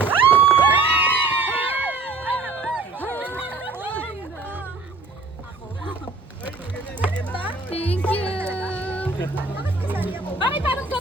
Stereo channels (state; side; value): quieter; left; 3.7 dB